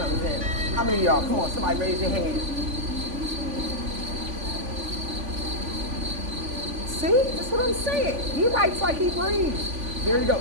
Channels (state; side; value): late; left; 3.5 ms